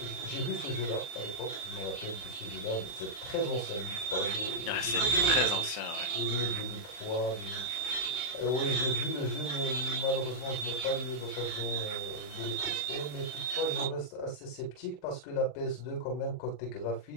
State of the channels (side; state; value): right; late; 39 ms